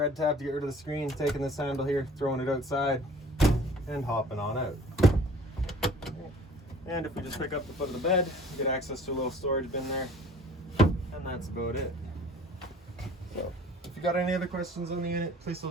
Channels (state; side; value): normal; both; correlation 0.49